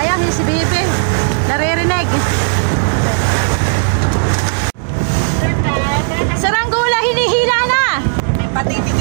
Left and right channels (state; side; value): silent; left; digital silence